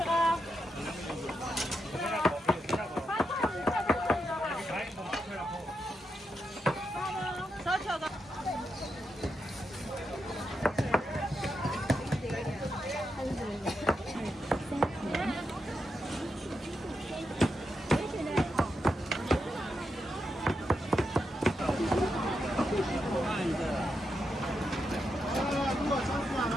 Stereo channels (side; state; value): both; normal; correlation 0.85